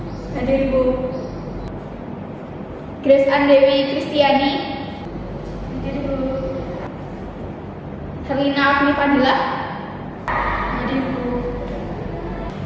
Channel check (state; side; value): identical; both; correlation 1.00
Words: Hadir, Bu. Grace Andewi Kristiani. Hadir, Bu. Herlina Afni Fadila. Hadir, Bu.